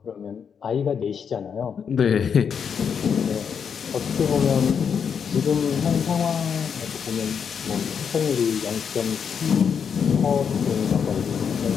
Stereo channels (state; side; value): quieter; right; 7.0 dB